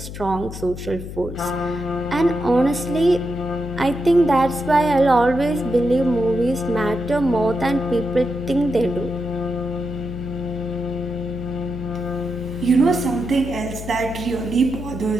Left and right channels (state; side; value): noise; left; hum, 10 dB below the sound